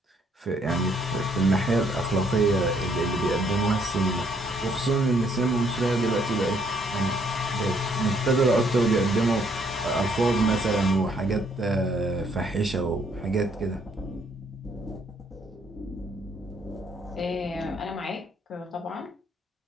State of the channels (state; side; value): normal; both; correlation 0.68